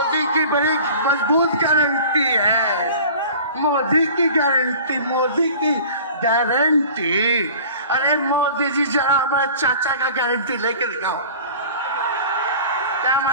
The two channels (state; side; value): inverted; both; correlation -0.43